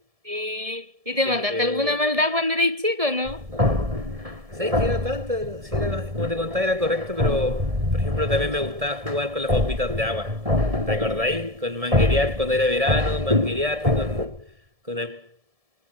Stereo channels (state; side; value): late; left; 1.7 ms